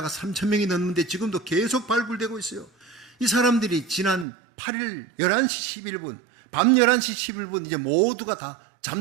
3,000명이 넘는데 지금도 계속 발굴되고 있어요. 이 사람들이 지난 8일 11시 11분 밤 11시 11분 이제 모두가 다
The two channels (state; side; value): drops out; left; at 4.2 s